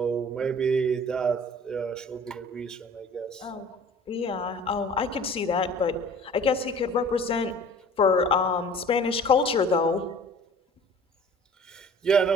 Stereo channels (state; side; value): normal; both; correlation 0.47